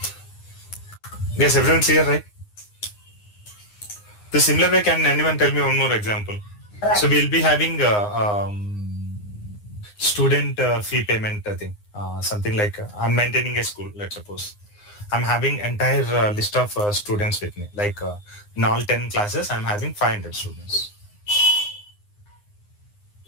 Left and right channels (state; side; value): late; right; 9.7 ms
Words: Yes, everyone clear, right? The similar way, can anyone tell me one more example? So we'll be having student fee payment thing. Something like I'm maintaining a school, let's suppose. I'm having entire list of students with me. Like in all 10 classes, I'm having 500 students.